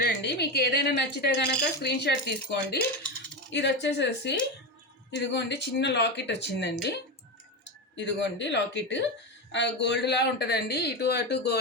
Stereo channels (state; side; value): normal; both; correlation 0.16